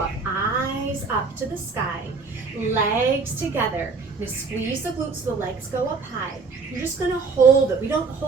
Eyes up to the sky. Legs together. Now squeeze the glutes so the legs go up high. You're just gonna hold it. We don't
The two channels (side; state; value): left; quieter; 4.5 dB